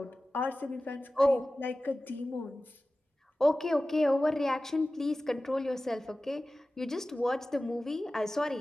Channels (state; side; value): normal; both; correlation 0.96